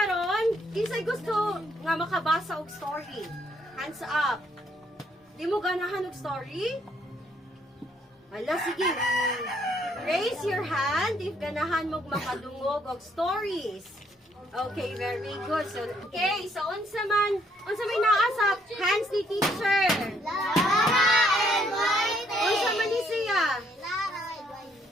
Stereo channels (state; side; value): normal; both; correlation 0.69